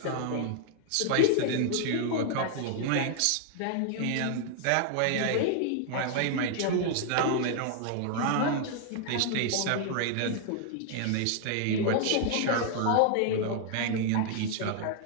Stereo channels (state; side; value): different; both; correlation 0.00